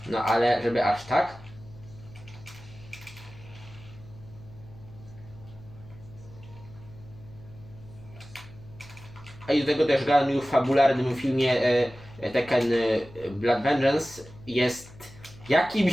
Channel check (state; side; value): noise; left; hum, 20 dB below the sound